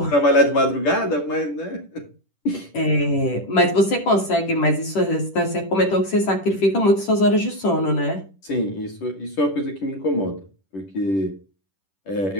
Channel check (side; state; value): right; late; 10 ms